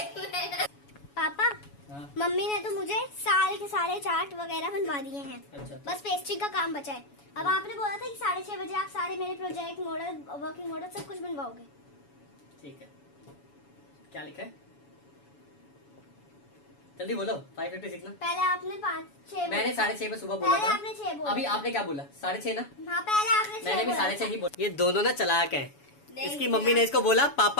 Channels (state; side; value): late; right; 7.1 ms